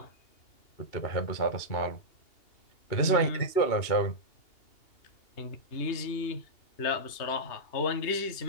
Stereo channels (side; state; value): right; late; 2.8 ms